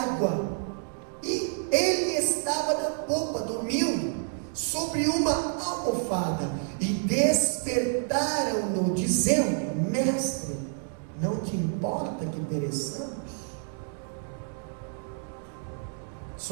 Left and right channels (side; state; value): left; silent; 59 dB below the other